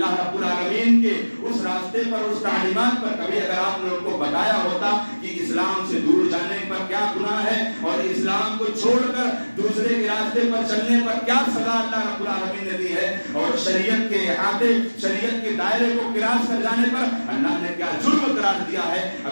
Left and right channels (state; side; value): inverted; both; correlation -1.00